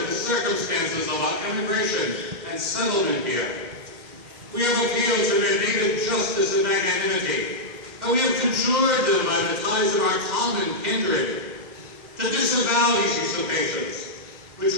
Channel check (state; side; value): late; left; 2.0 ms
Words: of the circumstances of our immigration and settlement here. We have appealed to their native justice and magnanimity, and we have conjured them by the ties of our common kindred to disavow these usurpations, which